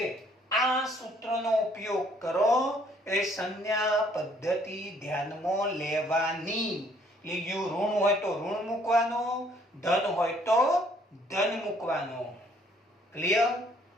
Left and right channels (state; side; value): normal; both; correlation 0.63